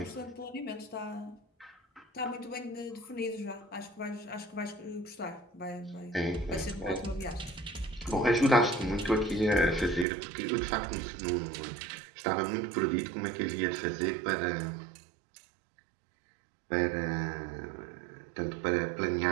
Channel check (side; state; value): left; drops out; at 10.1 s